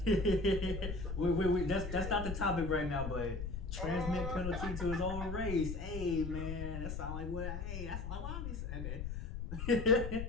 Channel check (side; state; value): left; noise; rumble, 5 dB below the sound